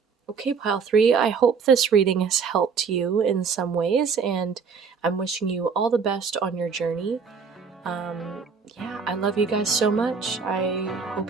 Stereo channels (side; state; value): left; quieter; 5.7 dB